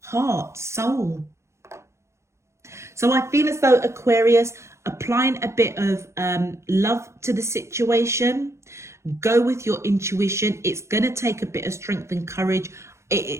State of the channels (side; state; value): left; late; 0.14 ms